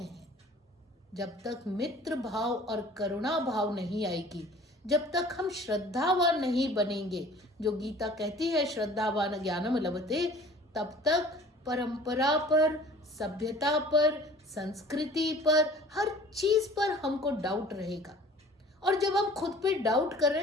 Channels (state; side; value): normal; both; correlation 0.48